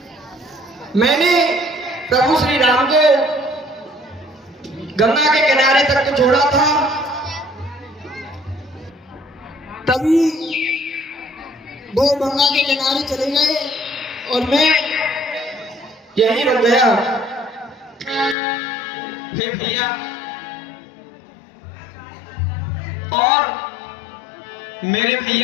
मैंने प्रभु श्री राम को गंगा के किनारे तक तो छोड़ा था, तभी वो गंगा के किनारे चले गए और मैं यहीं रुक गया। हे भैया, और मेरे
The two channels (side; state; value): right; drops out; at 18.4 s